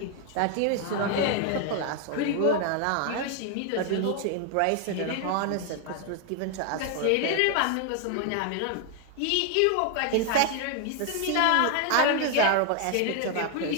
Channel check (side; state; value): both; different; correlation 0.00